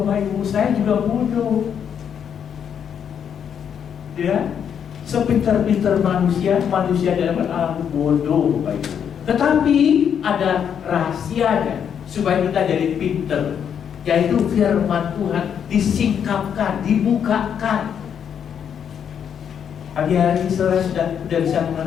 Ibu. Saya juga bodoh. Ya, sepintar-pintar manusia dalam Allah bodoh, Bapak Ibu. Tetapi ada rahasianya supaya kita jadi pintar, yaitu firman Tuhan disingkapkan, dibukakan. Hari-hari saudara sudah bisa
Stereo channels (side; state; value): right; quieter; 8.1 dB